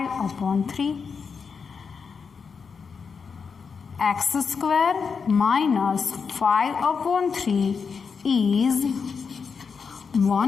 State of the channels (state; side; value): quieter; right; 5.7 dB